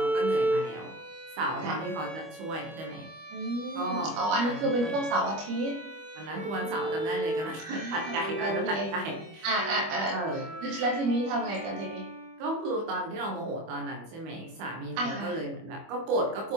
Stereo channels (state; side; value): late; left; 25 ms